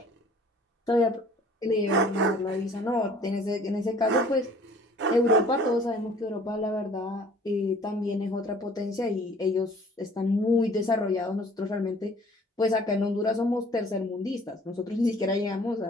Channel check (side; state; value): both; normal; correlation 0.53